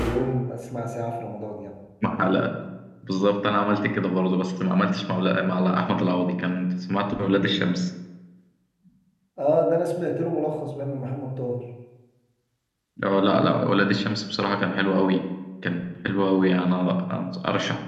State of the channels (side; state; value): both; identical; correlation 1.00